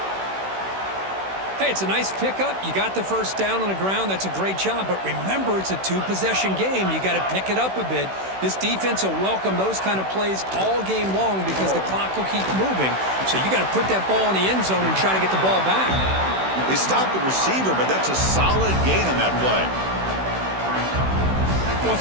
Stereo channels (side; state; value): left; late; 16 ms